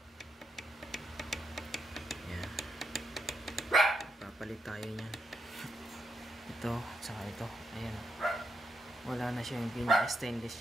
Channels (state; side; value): normal; both; correlation 0.80